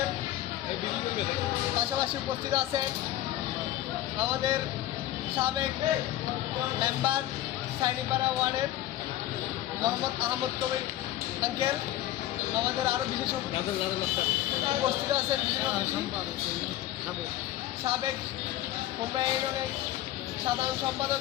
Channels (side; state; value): right; quieter; 14.1 dB